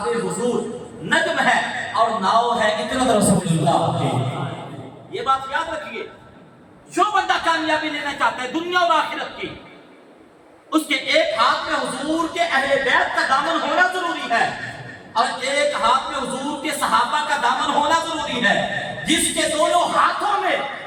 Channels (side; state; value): both; identical; correlation 1.00